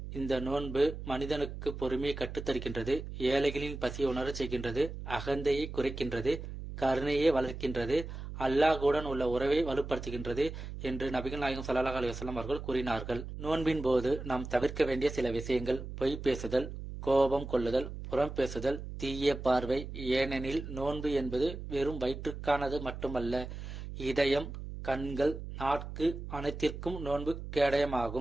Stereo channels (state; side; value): noise; right; hum, 9 dB below the sound